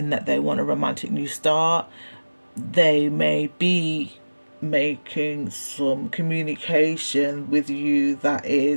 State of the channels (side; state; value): both; inverted; correlation -1.00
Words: that they want a romantic new start. They may be making some communication with you that